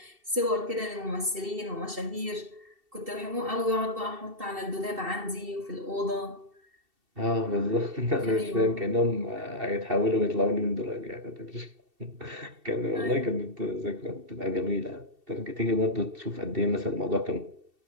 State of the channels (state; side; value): late; left; 2.7 ms